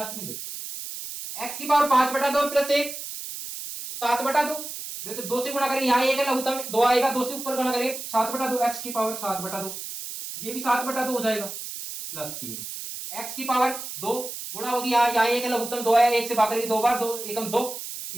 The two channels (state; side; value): noise; right; hiss, 8 dB below the sound